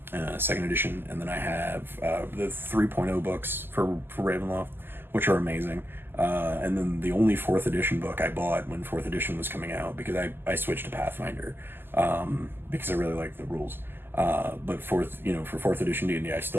second edition, and then I have the 3.0 books for Ravenloft, which are amazing. And then the only 4th edition book I bought when 4th edition was coming out, because I switched to Pathfinder, because I really like the rules. But for 4th edition D&D, I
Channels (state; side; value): late; left; 0.10 ms